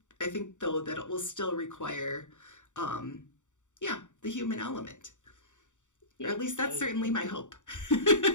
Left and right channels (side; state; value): right; late; 0.85 ms